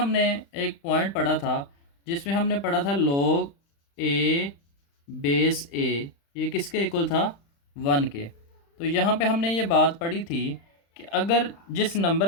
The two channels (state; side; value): late; right; 35 ms